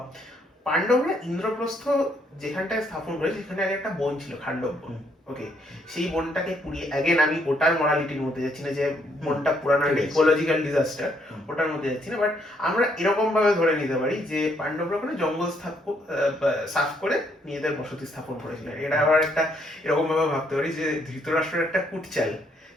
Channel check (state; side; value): normal; both; correlation 0.71